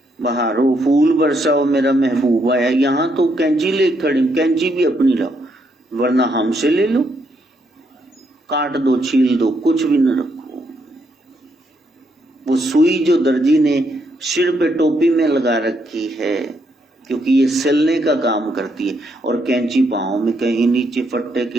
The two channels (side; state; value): both; normal; correlation 0.76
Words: बहारो फूल बरसाओ मेरा महबूब आया, यहां तो कैंची ले खड़ी, कैंची भी अपनी लाओ वरना हमसे ले लो, काट दो छील दो, कुछ भी न रखो। वो सुई जो दर्जी ने सिर पे टोपी में लगा रखी है, क्योंकि ये सिलने का काम करती है, और कैंची पांव में कहीं नीचे फट्टे